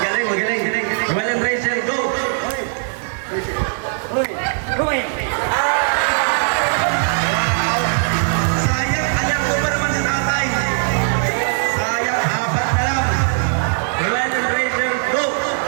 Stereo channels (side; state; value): left; silent; digital silence